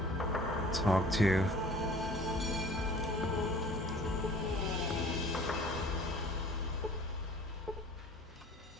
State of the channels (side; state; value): both; normal; correlation 0.48